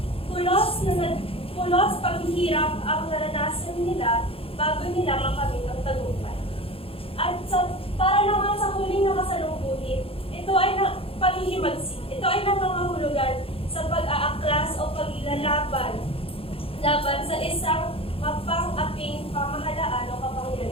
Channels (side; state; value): right; late; 0.27 ms